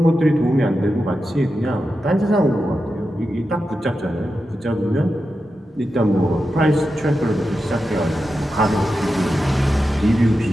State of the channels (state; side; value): normal; both; correlation 0.90